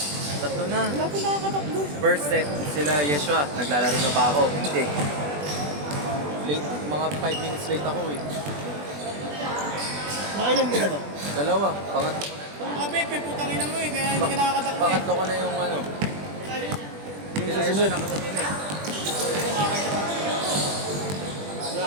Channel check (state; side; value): late; left; 20 ms